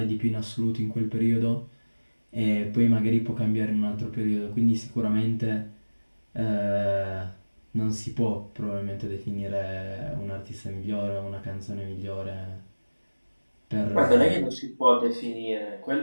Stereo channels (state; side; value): inverted; both; correlation -1.00